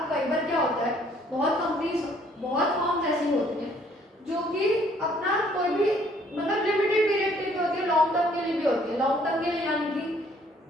कई बार क्या होता है, बहुत कंपनीज, बहुत फर्म्स ऐसी होती हैं जो कि अपना कोई भी मतलब लिमिटेड पीरियड के लिए होती है, लॉन्ग टर्म के लिए भी होती है। लॉन्ग टर्म के लिए यानी कि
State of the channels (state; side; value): normal; both; correlation 0.62